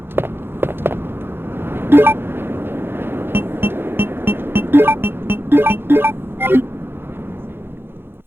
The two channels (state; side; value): late; left; 0.11 ms